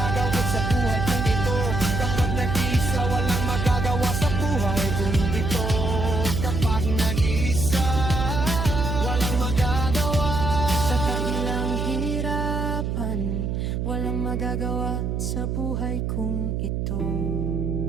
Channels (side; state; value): right; noise; hum, 1 dB below the sound